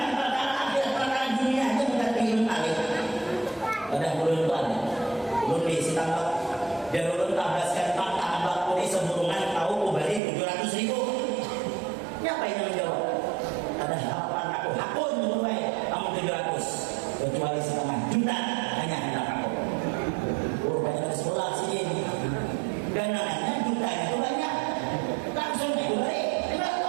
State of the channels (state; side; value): drops out; left; at 10.2 s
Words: perkara akhirat perkara dunia aja mengerti ilmu alih. Ada ulun itu ada. Ulun di Sitambak dan ulun tabaskan fakta ambak kodi seburungan tahu kubali 700.000. Siapa yang menjawab? Ada harapan aku hakun mulai kamu 700 kecuali setengah juta hanya hendak aku banyak dari sekolah sini dan namanya juta itu banyak langsung itu balik